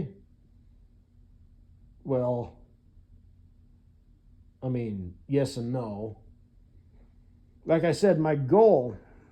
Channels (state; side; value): identical; both; correlation 1.00